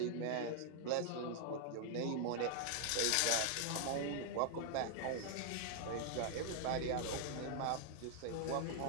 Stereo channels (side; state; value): both; different; correlation 0.00